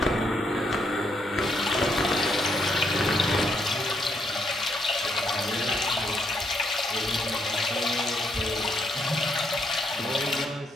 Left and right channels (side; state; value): both; normal; correlation 0.75